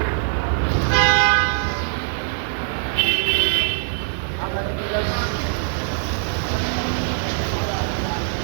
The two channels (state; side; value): silent; left; 64 dB below the other